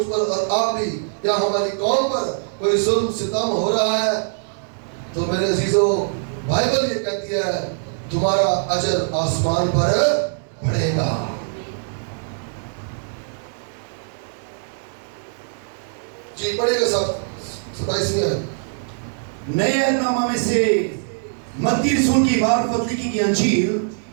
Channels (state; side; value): silent; left; digital silence